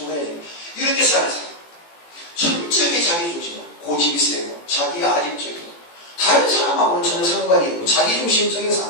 이렇게 사는 사람. 철저하게 자기중심이고 고집이 세고 자기 아집적이고 다른 사람하고는 전혀 상관이 없고 자기중심적인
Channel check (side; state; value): right; late; 18 ms